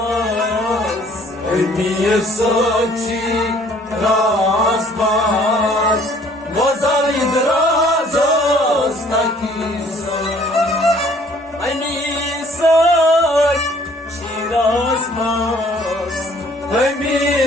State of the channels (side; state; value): both; normal; correlation 0.58